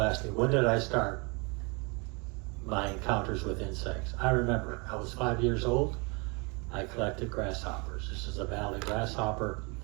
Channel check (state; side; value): quieter; left; 30.4 dB